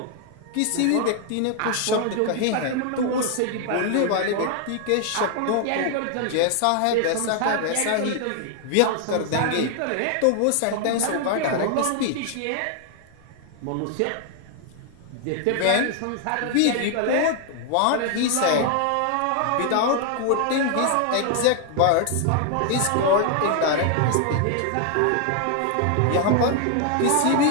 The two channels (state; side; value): different; both; correlation 0.00